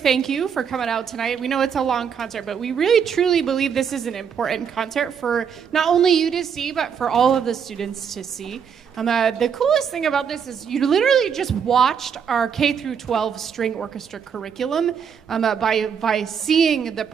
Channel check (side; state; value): left; quieter; 7.2 dB